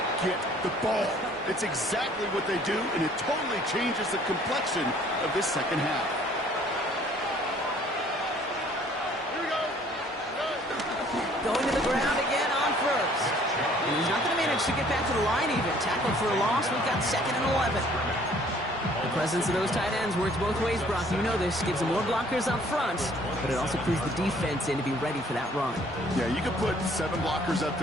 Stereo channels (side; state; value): both; normal; correlation 0.58